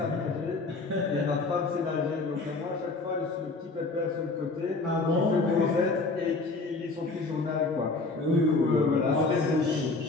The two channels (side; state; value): right; quieter; 3.6 dB